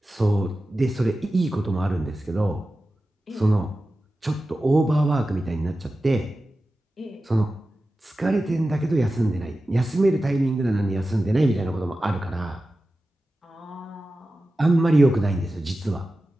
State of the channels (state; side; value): normal; both; correlation 0.94